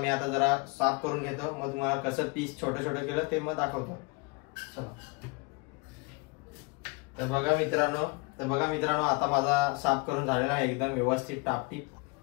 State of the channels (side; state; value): right; quieter; 28.5 dB